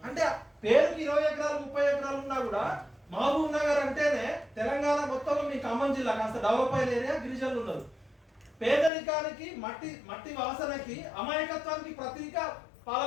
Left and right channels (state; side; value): drops out; right; at 8.9 s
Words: అంటే పేరుకి 20 ఎకరాలు 30 ఎకరాలు ఉన్నా కూడా మహబూబ్ నగర్ అంటేనే తెలంగాణ మొత్తంలో మీ ఖమ్మం జిల్లా కాస్త డెవలప్ అయిన ఏరియా, గిరిజనులు ఉన్నారు. పేదరికానికి, మట్టి వాసనకి, అమాయకత్వానికి ప్రతీక